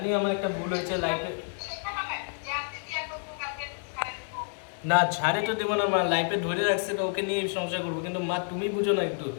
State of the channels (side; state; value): right; silent; digital silence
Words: আমার একটা ভুল হয়েছে লাইফে। না ছাড়ে তো দেবো না মা, লাইফে ধরে রাখছে তো ওকে নিয়ে সংসার করবো, কিন্তু মা তুমি বুঝো না একটু।